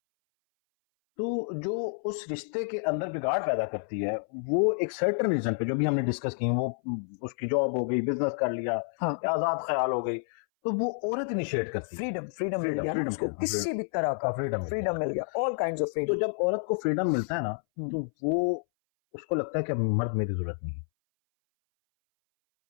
तो जो उस रिश्ते के अंदर बिगाड़ पैदा करती है वो एक सर्टेन रीजन पे, जो भी हमने डिस्कस की, वो उसकी जॉब हो गई, बिजनेस कर लिया, आजाद ख्याल हो गई, तो वो औरत इनिशिएट करती है। फ्रीडम मिल गया उसको, किसी भी तरह का फ्रीडम मिल गया, ऑल काइंड्स ऑफ फ्रीडम। तो जब औरत को फ्रीडम मिलता है ना, तो वो उसको लगता है कि मर्द मेरी जरूरत नहीं है।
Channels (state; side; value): silent; right; 58 dB below the other